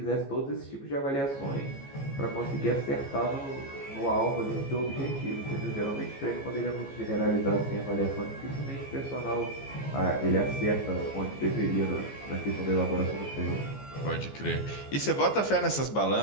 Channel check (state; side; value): late; right; 15 ms